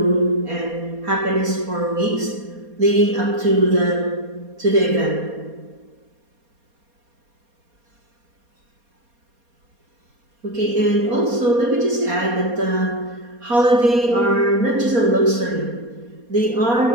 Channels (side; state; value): left; late; 4.2 ms